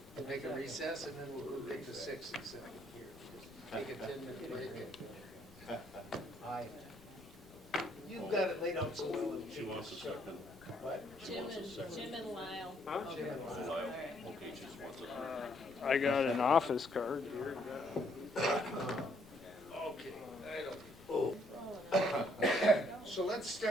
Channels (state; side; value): noise; left; rumble, 23 dB below the sound